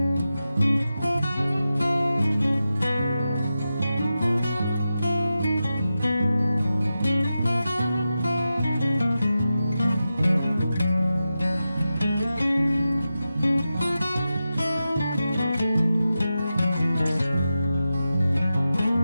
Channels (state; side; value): inverted; both; correlation -0.92